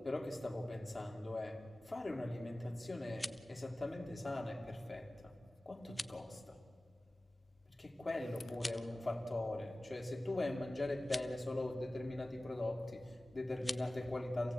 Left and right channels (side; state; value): both; normal; correlation 0.97